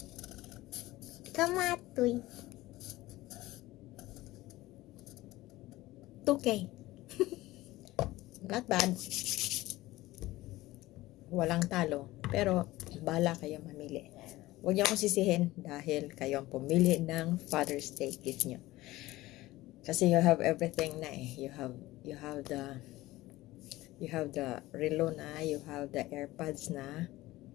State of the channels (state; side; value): quieter; right; 17.8 dB